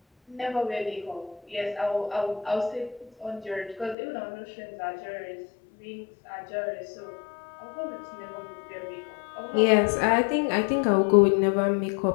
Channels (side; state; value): right; drops out; at 4.0 s